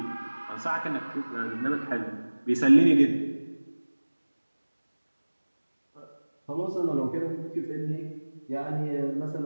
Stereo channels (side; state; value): both; inverted; correlation -1.00